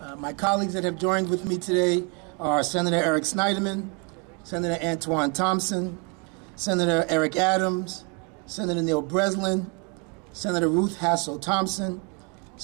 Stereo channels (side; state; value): left; quieter; 34.2 dB